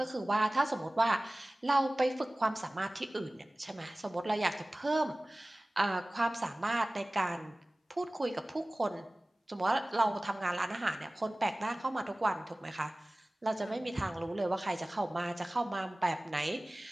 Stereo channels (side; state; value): both; normal; correlation 0.98